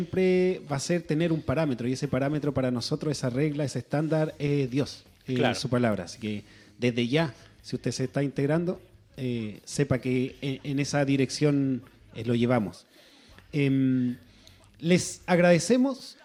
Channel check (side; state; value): both; identical; correlation 1.00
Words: va a ser tener un parámetro, y ese parámetro para nosotros, esa regla, ese estándar es Dios, claro, su palabra. Así que desde ya, si usted se está integrando, sepa que en esa dirección lo llevamos. Les agradecemos